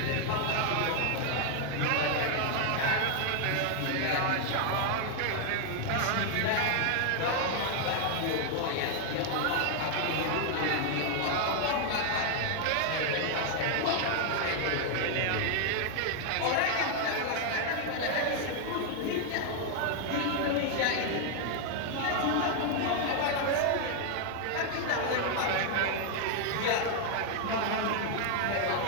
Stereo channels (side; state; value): both; different; correlation 0.00